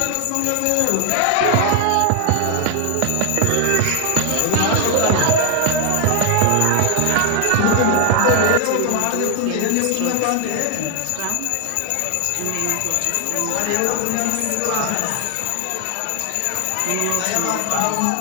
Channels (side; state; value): both; different; correlation 0.00